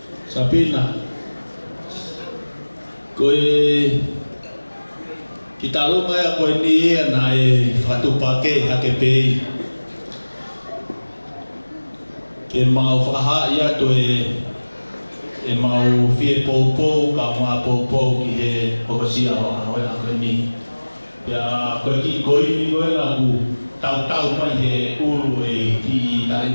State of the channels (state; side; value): inverted; both; correlation -1.00